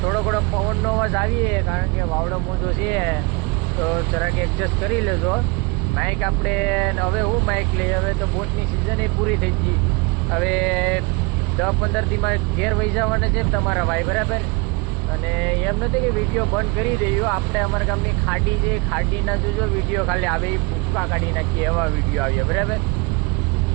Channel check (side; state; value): left; quieter; 27.2 dB